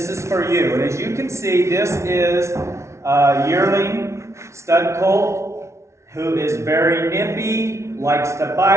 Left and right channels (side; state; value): left; late; 0.13 ms